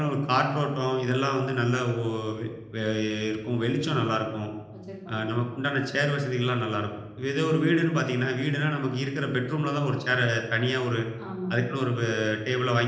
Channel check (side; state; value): both; identical; correlation 1.00